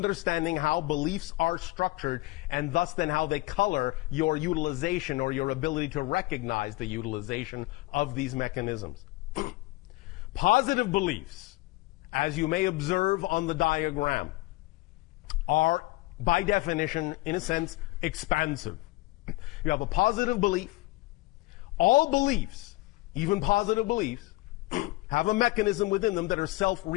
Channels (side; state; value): right; quieter; 20.7 dB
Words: how beliefs are structured and thus then how they color your utilization or your ability to recognize the utilization of these mechanisms. Positive beliefs, as you may observe on the diagram, are by definition, in a sense, expansive. You have a positive belief. All beliefs, even positive beliefs, have a mechanism within them that are